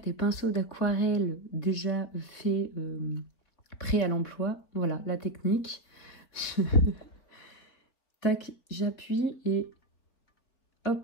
pinceaux d'aquarelle déjà faits, prêts à l'emploi, voilà la technique. Tac, j'appuie et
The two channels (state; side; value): late; right; 3.8 ms